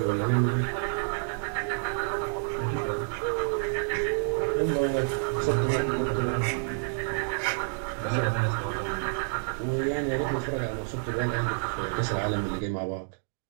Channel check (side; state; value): left; silent; digital silence